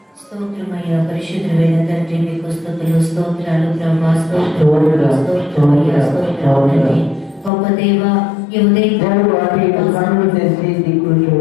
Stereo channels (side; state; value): right; drops out; at 7.5 s